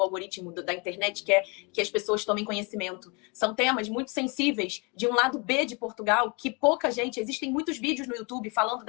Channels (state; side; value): quieter; right; 30.9 dB